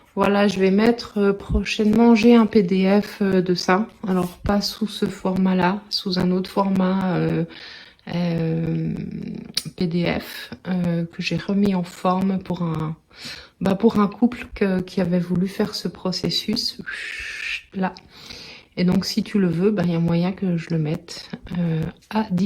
Voilà, je vais mettre prochainement, j'ai un PDF de ça. Alors, pas sous ce format-là, sous un autre format PDF que j'ai remis en forme pour un couple qui avait voulu faire ce processus là. Et donc, si tu le veux, il y a moyen que je le mette à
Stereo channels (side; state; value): both; identical; correlation 1.00